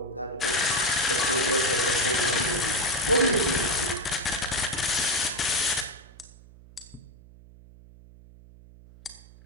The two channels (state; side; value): noise; right; hum, 22 dB below the sound